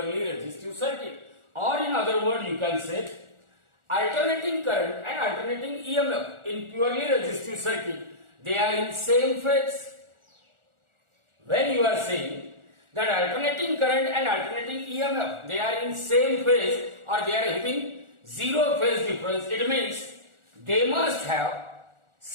resistive circuit. Or in other words, you can say, alternating current and alternating EMF in purely resistive circuit, they are in same phase. When you are saying that alternating current and alternating EMF, they are in same phase or they are having zero phase difference, it means they must have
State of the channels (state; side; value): late; left; 1.4 ms